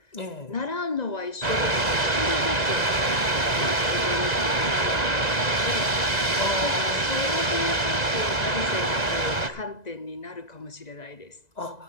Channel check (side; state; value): right; late; 1.9 ms